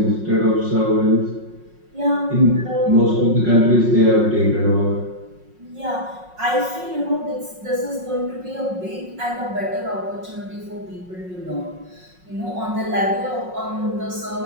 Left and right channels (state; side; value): late; left; 5.5 ms